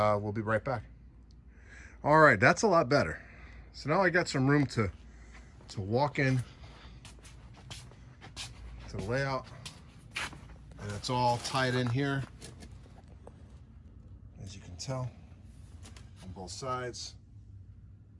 be right back. All right, that's a lot better. So now I got some room to walk in to the layout, and it's all tied in here, as you can tell, on both sides.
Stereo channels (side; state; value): both; identical; correlation 1.00